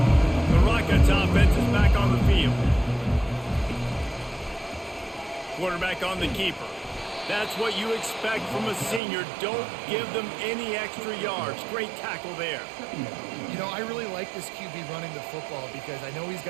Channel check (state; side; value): drops out; left; at 9.0 s